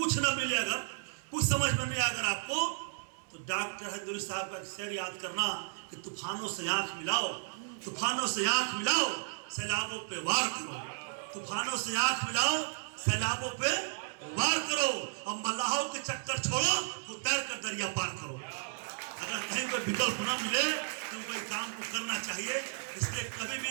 न मिले, अगर कुछ समझ में नहीं आए अगर आपको, तो डॉक्टर हजूरी साहब का शेर याद करना कि तूफानों से आंख मिलाओ, तूफानों से आंख मिलाओ, सैलाबों पे वार करो। तूफानों से आंख मिलाओ, सैलाबों पे वार करो, और मल्लाहों के चक्कर छोड़ो, तो तैर कर दरिया पार करो। अगर कहीं कोई विकल्प न मिले तो कोई काम को करना चाहिए। इसलिए कभी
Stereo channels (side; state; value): left; silent; 55 dB below the other